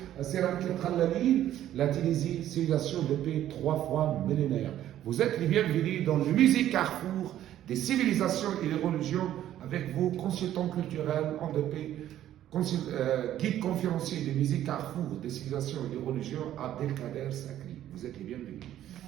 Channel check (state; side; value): quieter; left; 12.1 dB